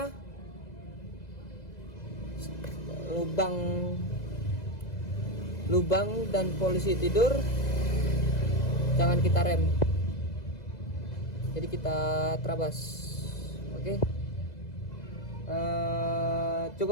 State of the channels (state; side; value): late; right; 2.0 ms